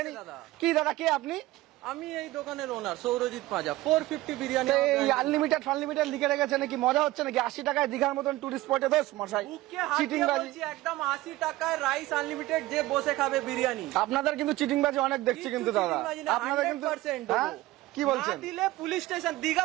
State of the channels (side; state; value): left; quieter; 17.8 dB